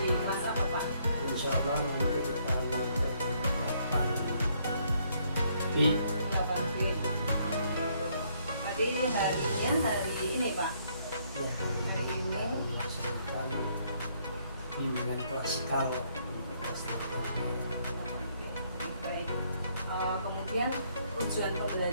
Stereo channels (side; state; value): both; inverted; correlation -0.69